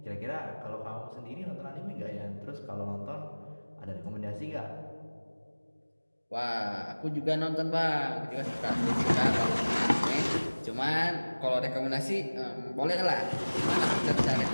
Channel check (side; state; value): both; inverted; correlation -1.00